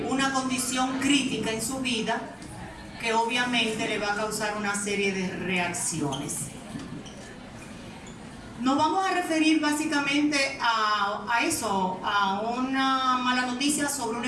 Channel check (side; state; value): both; identical; correlation 1.00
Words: una condición crítica en su vida que obviamente le va a causar una serie de reacciones. Nos vamos a referir básicamente a eso, a una mala noticia sobre una